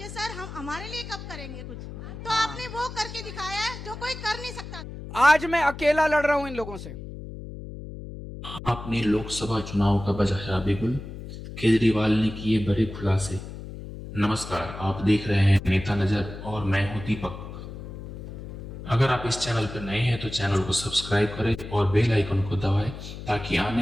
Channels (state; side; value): noise; left; hum, 11 dB below the sound